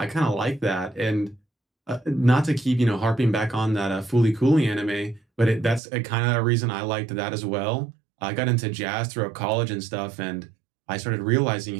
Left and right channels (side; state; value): left; drops out; at 5.8 s